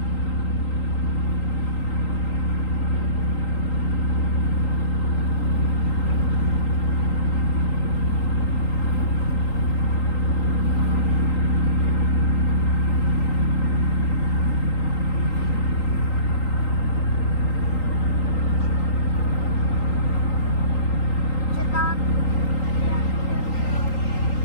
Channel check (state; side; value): late; right; 3.8 ms